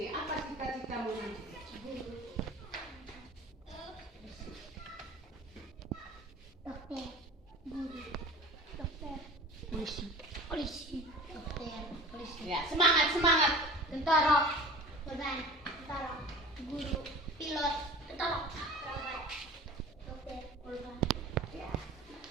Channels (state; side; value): normal; both; correlation 0.39